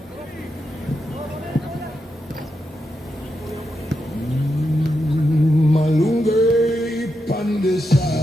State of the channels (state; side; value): normal; both; correlation 0.86